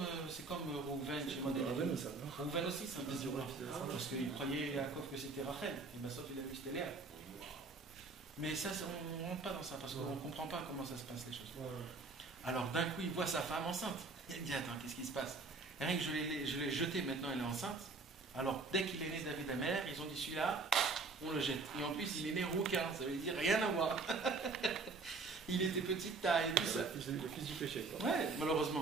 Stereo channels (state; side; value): quieter; left; 3.9 dB